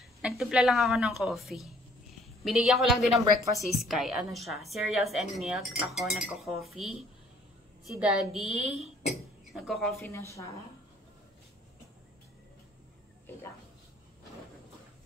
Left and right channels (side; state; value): both; normal; correlation 0.60